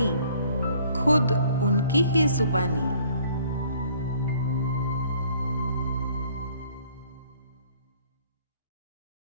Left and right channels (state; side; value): inverted; both; correlation -0.58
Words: खुद उनकी ही जुबानी।